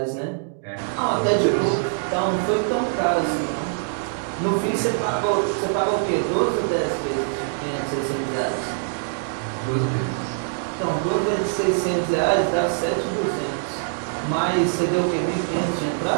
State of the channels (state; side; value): silent; left; digital silence